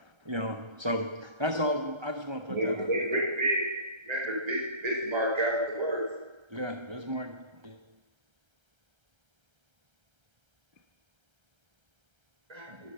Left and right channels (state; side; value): late; left; 1.3 ms